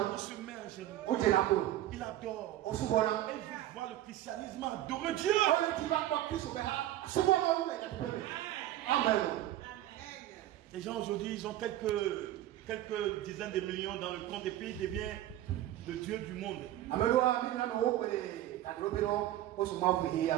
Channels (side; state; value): left; quieter; 13.9 dB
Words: se met en genoux. Il adore. Il veut voir le christianisme adorer Dieu. Amen. Les gens aujourd'hui, ils ont quelques dizaines de millions dans le compte et puis ils deviennent le Dieu du monde.